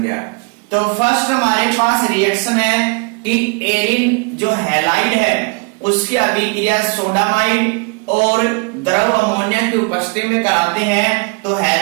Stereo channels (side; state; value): left; quieter; 32.3 dB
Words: गया। तो फर्स्ट हमारे पास रिएक्शन है कि एरिन जो हैलाइड है उसकी अभिक्रिया सोडामाइड और द्रव अमोनिया की उपस्थिति में कराते हैं तो